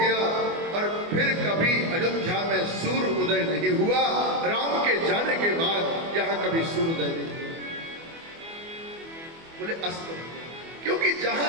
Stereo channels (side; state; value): left; late; 24 ms